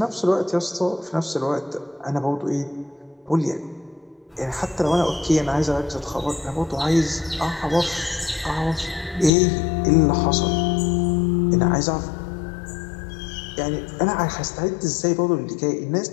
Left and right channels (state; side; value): drops out; right; at 9.3 s